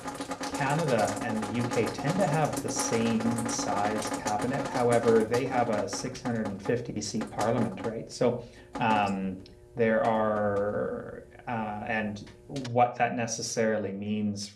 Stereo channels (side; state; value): both; identical; correlation 1.00